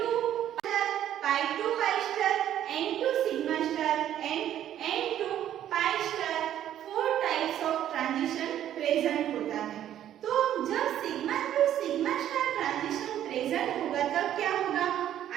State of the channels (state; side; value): quieter; left; 11.2 dB